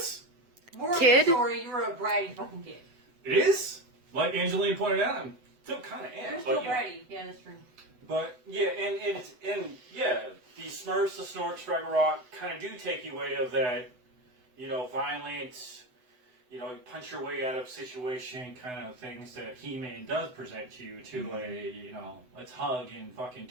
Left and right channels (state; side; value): late; left; 8.0 ms